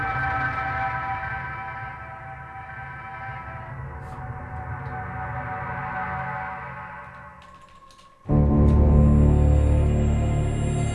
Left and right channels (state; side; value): identical; both; correlation 1.00